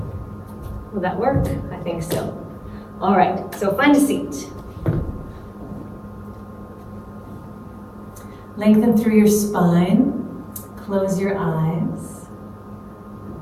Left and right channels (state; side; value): identical; both; correlation 1.00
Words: Will that work? I think so. All right, so find a seat. Lengthen through your spine. Close your eyes.